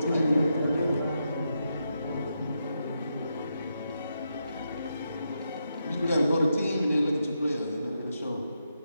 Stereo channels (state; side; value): inverted; both; correlation -0.83